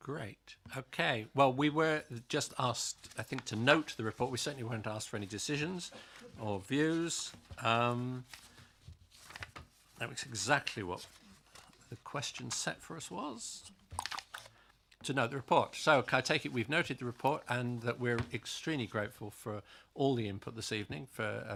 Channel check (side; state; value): both; identical; correlation 1.00